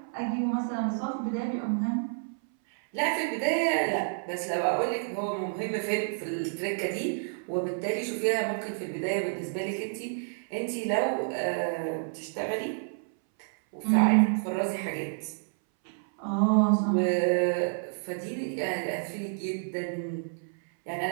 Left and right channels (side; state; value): left; silent; 58 dB below the other